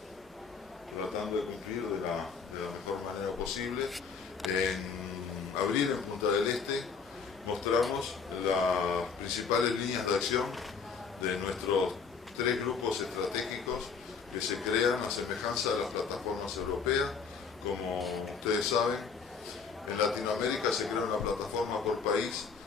tratando de cumplir de la mejor manera posible. En abril, en Punta del Este, mostramos las principales líneas de acción de nuestros 3 grupos estratégicos que se crean a semejanza de las plataformas europeas. Como ustedes saben, en Latinoamérica se crea una plataforma por país,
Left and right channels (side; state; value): right; quieter; 5.6 dB